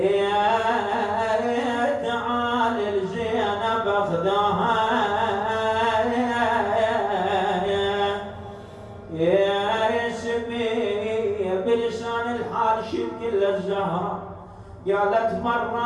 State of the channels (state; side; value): identical; both; correlation 1.00